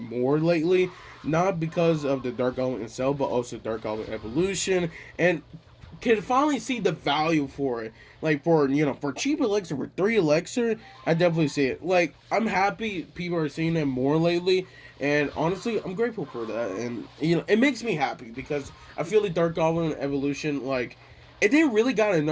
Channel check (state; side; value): identical; both; correlation 1.00